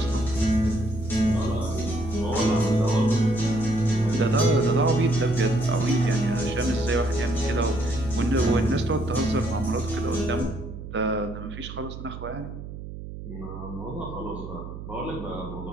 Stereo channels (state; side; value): noise; right; hum, 11 dB below the sound